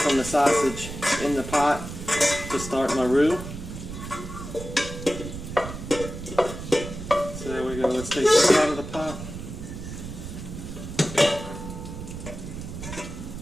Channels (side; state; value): right; noise; rumble, 9 dB below the sound